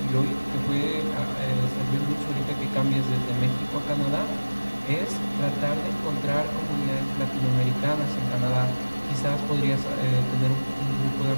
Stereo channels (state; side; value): inverted; both; correlation -1.00